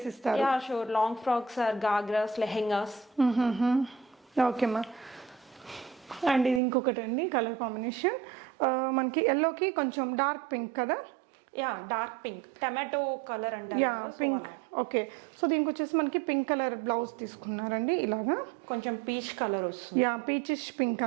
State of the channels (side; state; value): left; drops out; at 6.6 s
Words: Yeah sure. Long frocks or ghagras, lehengas. ఓకేమ్మా. అండ్ ఇది ఇంకొకటి అండి కలర్ కాంబినేషన్, మనకి ఎల్లోకి కొంచెం డార్క్ పింక్ కదా. Yeah dark pink, tomato colour అంటారు. Yeah pink. ఓకే, సో దీనికి వచ్చేసి మనకి పింక్ కలర్ బ్లౌజ్ తీసుకున్నారండి ఇలాగా. కొంచెం పీచ్ కలర్ వస్తుంది. యా పీచిష్ పింక్